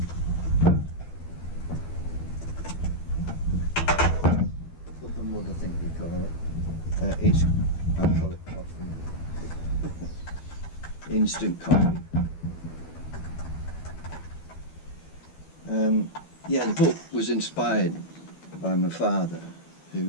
Cup and mug, I think we call it. I call it coffee. Instant coffee. Yeah, the book was inspired by my father,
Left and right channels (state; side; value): late; right; 12 ms